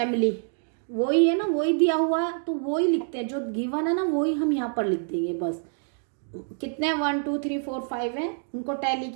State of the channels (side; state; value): left; silent; 56 dB below the other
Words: वही है ना, वही दिया हुआ है तो वही लिखते हैं, जो गिवन है ना वही हम यहाँ पर लिख देंगे बस। कितने 1 2 3 4 5 है, उनको टैली